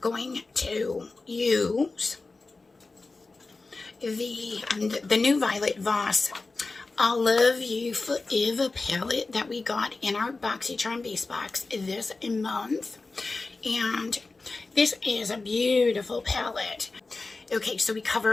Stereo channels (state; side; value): quieter; right; 3.6 dB